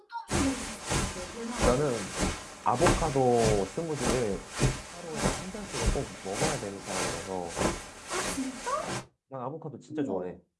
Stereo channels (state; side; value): identical; both; correlation 1.00